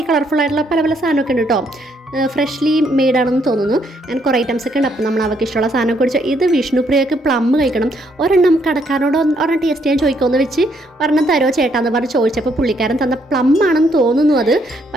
കളർഫുൾ ആയിട്ടുള്ള പല പല സാധനമൊക്കെ ഉണ്ട് കേട്ടോ. ഫ്രഷ്ലി മെയ്ഡാണെന്ന് തോന്നുന്നു. അങ്ങനെ കുറേ ഐറ്റംസ് ഒക്കെ ഉണ്ട്. അപ്പോൾ നമ്മൾ അവൾക്ക് ഇഷ്ടമുള്ള സാധനം കുടിച്ചു. ഇത് വിഷ്ണുപ്രിയക്ക് പ്ലം കഴിക്കണം. ഒരെണ്ണം കടക്കാരനോട് ഒരെണ്ണം ടേസ്റ്റ് ചെയ്യാൻ ചോദിക്കുമെന്ന് വെച്ച് ഒരെണ്ണം തരുമോ ചേട്ടാന്ന് പറഞ്ഞ് ചോദിച്ചപ്പോൾ പുള്ളിക്കാരൻ തന്ന പ്ലം ആണെന്ന് തോന്നുന്നു അത്.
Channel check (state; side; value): normal; both; correlation 0.71